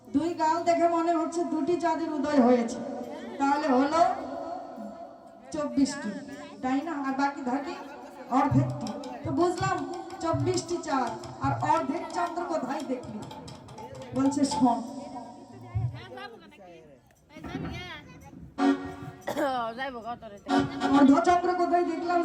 2 গাল দেখে মনে হচ্ছে 2টি চাঁদের উদয় হয়েছে। তাহলে হলো 24টি, তাই না? আর বাকি থাকে অর্ধেকটি। তো বুঝলাম 24টি চাঁদ আর অর্ধেক চন্দ্র কোথায় দেখলি? বলছে শোন। অর্ধচন্দ্র কোথায় দেখলাম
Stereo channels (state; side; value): identical; both; correlation 1.00